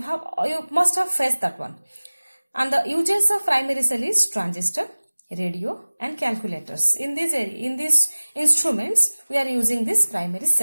must have faced that one. And the uses of primary cell is transistor, radio and calculators. In these instruments we are using this primary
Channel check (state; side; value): inverted; both; correlation -1.00